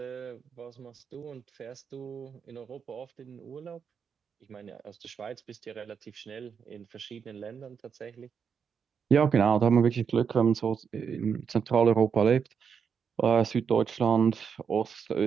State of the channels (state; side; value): quieter; left; 6.7 dB